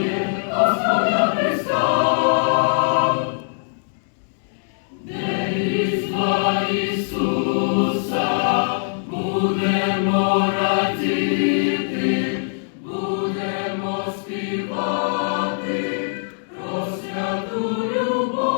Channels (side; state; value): right; silent; digital silence